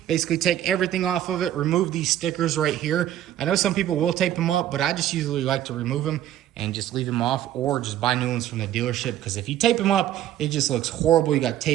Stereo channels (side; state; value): left; quieter; 12.1 dB